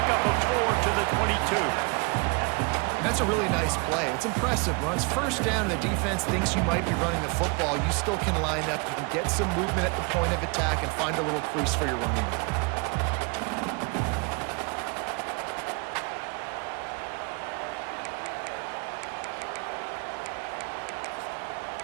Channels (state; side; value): quieter; left; 31.1 dB